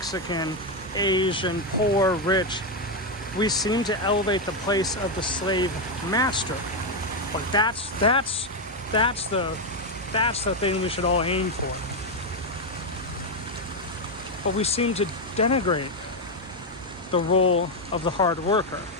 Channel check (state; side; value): normal; both; correlation 0.05